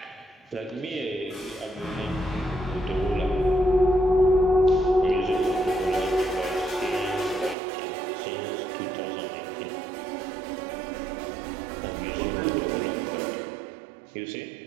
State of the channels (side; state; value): left; drops out; at 7.6 s